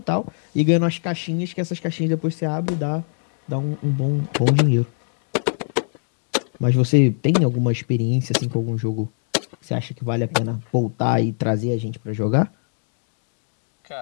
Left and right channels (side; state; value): right; silent; digital silence